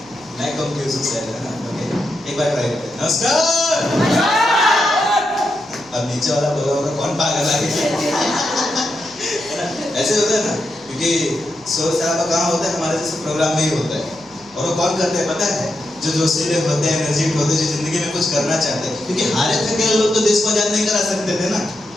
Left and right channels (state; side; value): noise; left; hum, 28 dB below the sound